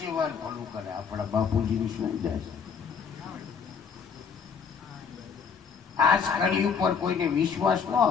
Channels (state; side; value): quieter; right; 6.3 dB